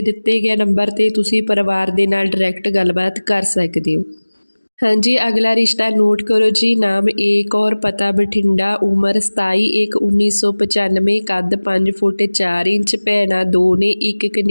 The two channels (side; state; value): both; inverted; correlation -1.00